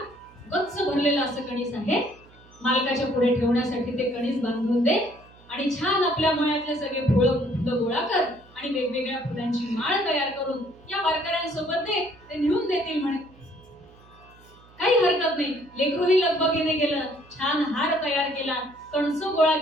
गच्च भरलेला असं कणीस आहे, मालकाच्या पुढे ठेवण्यासाठी ते कणीस बांधून दे, आणि छान आपल्या मळ्यातले सगळे फुलं गोळा कर आणि वेगवेगळ्या फुलांची माळ तयार करून या वारकऱ्यांसोबत दे, ते नेऊन देतील म्हणे. काही हरकत नाही. लेकरूही लगबगीने गेलं, छान हार तयार केला, कणसं गोळा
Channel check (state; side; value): noise; right; hum, 26 dB below the sound